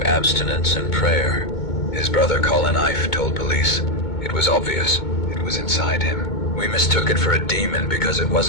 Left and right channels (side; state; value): right; late; 2.2 ms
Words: abstinence and prayer. His brother Colin Ife told police it was obvious it was inside him. We mistook it for a demon because it